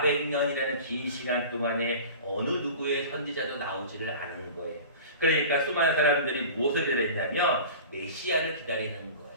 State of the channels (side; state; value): both; inverted; correlation -0.38